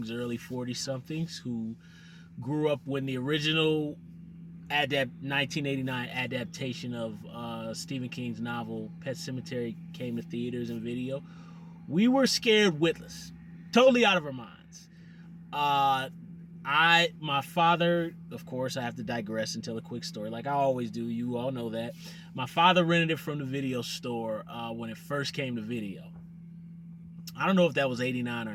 early 40 somethings who grew up when the original 1989 adaptation of Stephen King's novel Pet Sematary came to theaters and video, we were scared witless, totally out of our minds. My father, of course, I have to digress and tell a quick story like I always do. You all know that. My father rented it from the video store when it first came to video. I don't know if that was 89 or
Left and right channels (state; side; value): identical; both; correlation 1.00